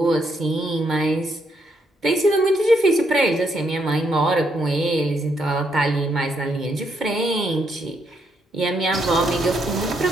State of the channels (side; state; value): both; normal; correlation 0.76